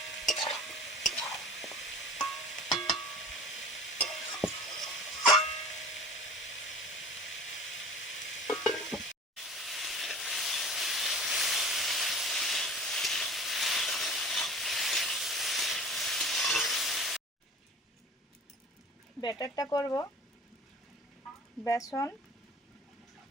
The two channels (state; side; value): normal; both; correlation 0.41